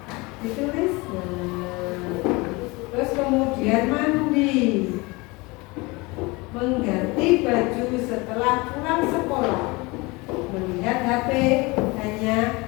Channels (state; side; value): quieter; right; 24.7 dB